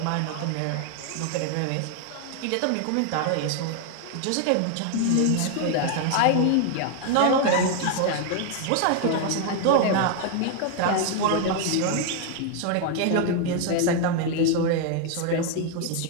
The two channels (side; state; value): both; different; correlation 0.00